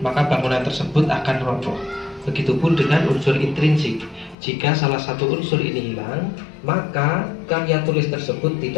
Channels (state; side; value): drops out; right; at 4.4 s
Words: maka bangunan tersebut akan roboh. Begitupun dengan unsur intrinsik. Jika salah satu unsur ini hilang, maka karya tulis tersebut